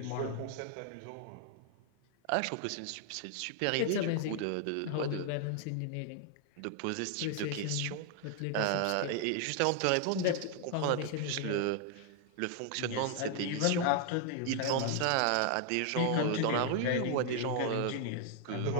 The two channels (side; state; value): both; different; correlation 0.00